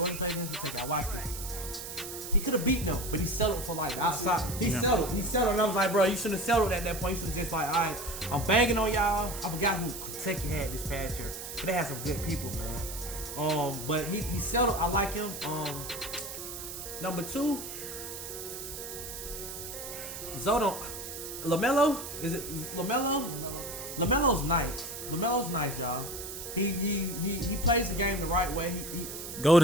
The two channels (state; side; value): noise; right; hiss, 8 dB below the sound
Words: played against Kentucky. I watched it. He could have beaten them, but he settled for like outside. He settled, and I was like, bro, you shouldn't have settled at that point. You should have just like, all right, I'm banging on y'all. I forgot who Kentucky had this past year, but they had some good people, man. But he settled. I like him. Number 2, Zodo, LaMelo. Is it LaMelo? LaMelo's nice. LaMelo's nice, y'all. He plays the game the right way.